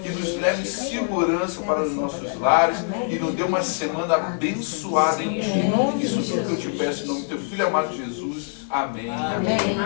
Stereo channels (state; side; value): silent; right; 63 dB below the other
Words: e nos leve em segurança para os nossos lares e nos dê uma semana abençoada em Ti. Isso tudo que eu te peço em nome do Teu Filho amado Jesus. Amém. Amém.